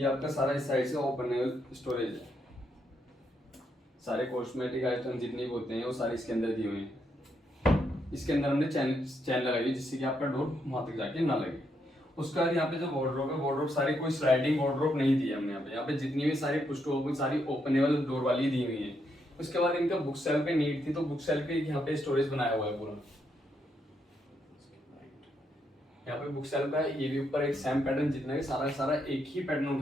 आपका सारा इस साइड से ओपन स्टोरेज है, सारे कॉस्मेटिक आइटम जितने भी होते हैं वो सारे इसके अंदर दिए हुए हैं। इसके अंदर हमने चैन लगाई है जिससे कि आपका डोर वहां तक जाके ना लगे। उसका यहाँ पे जो वार्डरोब है, वार्डरोब सारी कोई स्लाइडिंग वार्डरोब नहीं दी है हमने यहाँ पे जितनी भी सारी पुश टू ओपन सारी ओपनेबल डोर वाली दी हुई है। उसके बाद इनका बुक सेल पे नीड थी तो बुक सेल पे यहाँ पे स्टोरेज बनाया हुआ है पूरा। यहाँ पे बुक सेल का ये भी ऊपर एक सेम पैटर्न, जितना भी सारा एक ही पैटर्न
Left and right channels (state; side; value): normal; both; correlation 0.78